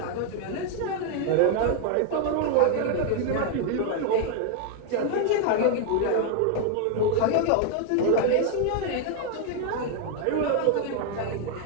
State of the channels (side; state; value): both; different; correlation 0.00